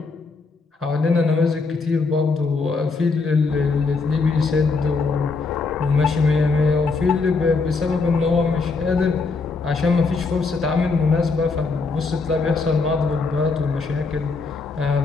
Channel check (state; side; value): quieter; right; 4.2 dB